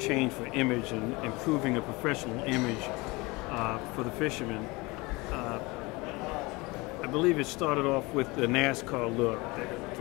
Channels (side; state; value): right; quieter; 24.2 dB